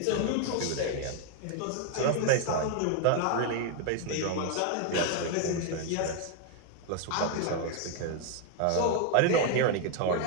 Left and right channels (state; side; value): different; both; correlation 0.00